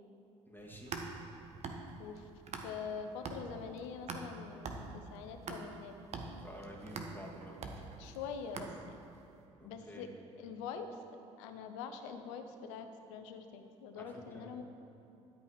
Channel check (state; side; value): normal; both; correlation 0.32